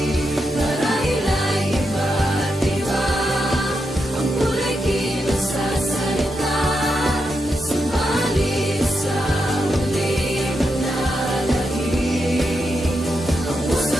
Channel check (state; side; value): normal; both; correlation 0.85